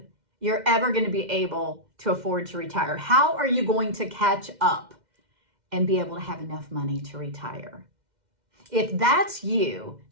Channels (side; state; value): left; late; 2.1 ms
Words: you're ever going to be able to afford to retire. How are you going to catch up and be able to have enough money to retire? If that's you,